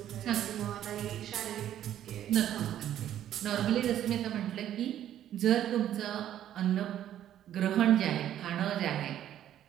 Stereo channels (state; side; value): quieter; left; 11.3 dB